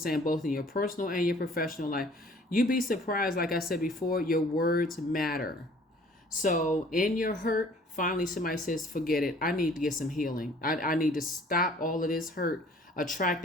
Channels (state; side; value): normal; both; correlation 0.54